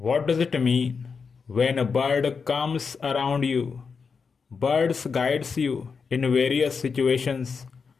does it mean when a bird comes around you? Birds guides you in various situations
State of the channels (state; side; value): quieter; right; 5.5 dB